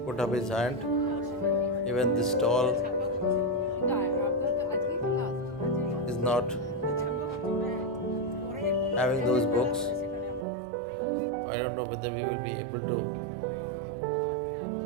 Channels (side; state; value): left; drops out; at 10.5 s